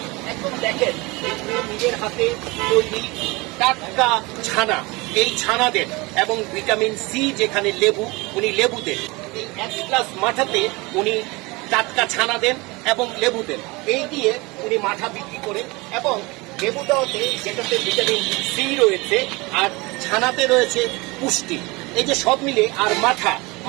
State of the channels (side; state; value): left; quieter; 24.5 dB